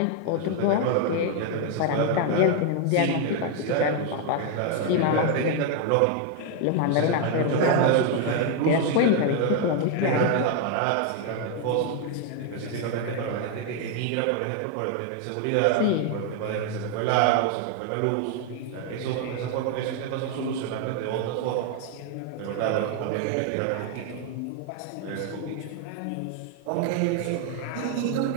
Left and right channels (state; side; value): different; both; correlation 0.01